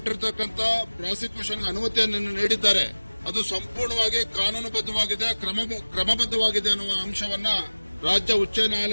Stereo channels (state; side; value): inverted; both; correlation -1.00